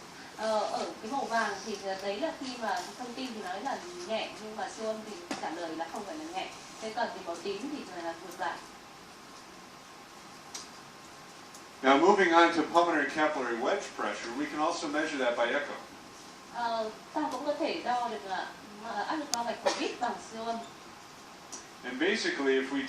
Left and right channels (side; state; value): both; identical; correlation 1.00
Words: Ở cái màu vàng thì đấy là khi mà thông tin thì nói là nhẹ, nhưng mà siêu âm thì trả lời là không phải là nhẹ. Thế còn thì màu tím thì là ngược lại. Now moving on to pulmonary capillary wedge pressure, we can also measure that by echo. Ta cũng có thể đo được áp lực bao mạch của huyết bằng siêu âm. And basically, if we